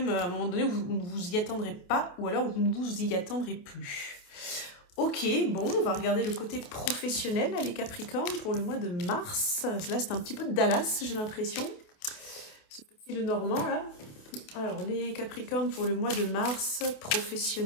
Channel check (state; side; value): late; right; 28 ms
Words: à un moment donné où vous ne vous y attendrez pas ou alors vous ne vous y attendrez plus. Ok, bon, on va regarder le côté professionnel, là, les Capricornes, pour le mois de mars. Là, c'est un petit peu de Dallas, j'ai l'impression. Ce petit le Normand, là. Alors, les Capricornes pour le mois de mars,